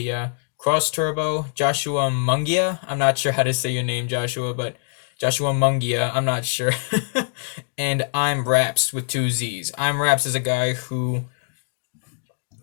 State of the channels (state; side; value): silent; right; digital silence